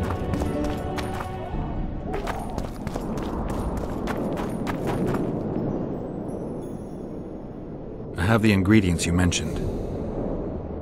I have the ingredients you mentioned.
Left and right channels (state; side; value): identical; both; correlation 1.00